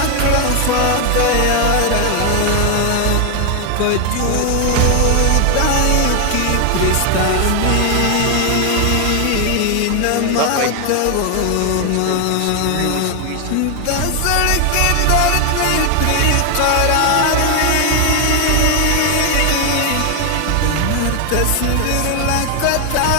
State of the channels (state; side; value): different; both; correlation 0.01